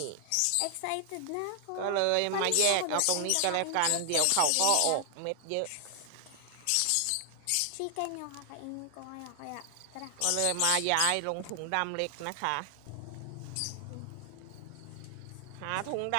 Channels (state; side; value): different; both; correlation 0.00